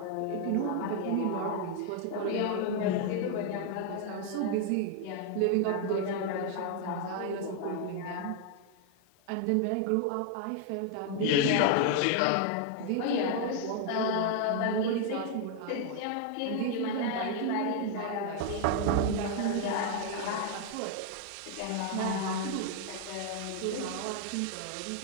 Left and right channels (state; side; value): different; both; correlation 0.00